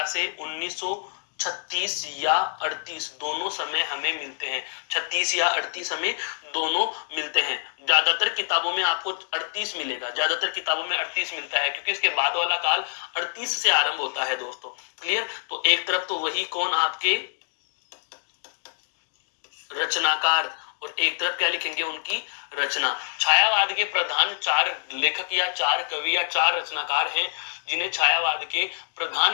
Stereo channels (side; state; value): right; silent; digital silence